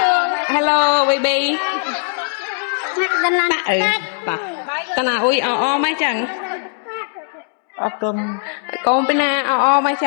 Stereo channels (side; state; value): right; silent; digital silence